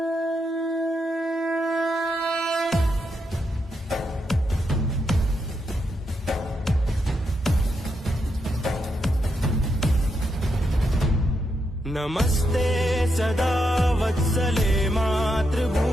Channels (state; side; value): normal; both; correlation 0.82